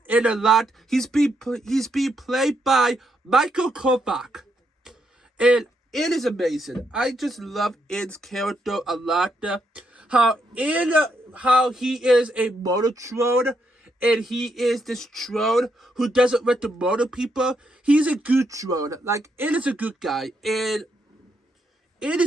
N a lot. He's being played by Michael Kovac. And N is amazing. I just love N's character a lot. How he is a Monotron. And he is this drone who doesn't want to murder people. He's a good drone. Like, N is a good guy. And it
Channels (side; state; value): both; normal; correlation 0.78